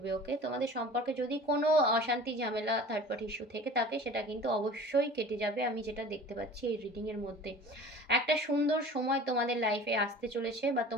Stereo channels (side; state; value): both; normal; correlation 0.42